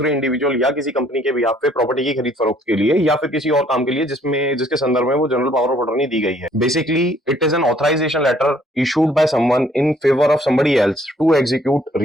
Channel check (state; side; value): normal; both; correlation 0.62